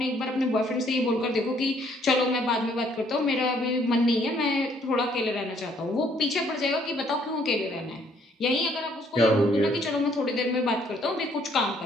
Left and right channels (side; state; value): both; normal; correlation 0.65